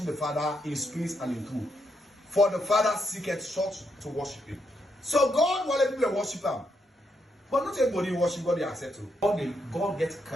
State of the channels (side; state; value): both; normal; correlation 0.79